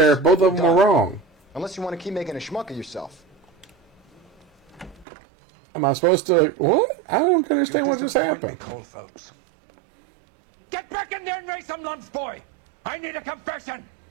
Both of them were Done. wrong. Unless you want to keep making a schmuck of yourself. Am I supposed to... What? I don't understand what just happened. Cold Phelps. Get back in there and raise some lumps, boy! I need a confession!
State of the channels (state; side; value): drops out; left; at 5.1 s